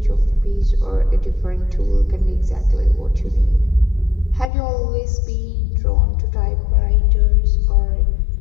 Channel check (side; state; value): right; drops out; at 4.5 s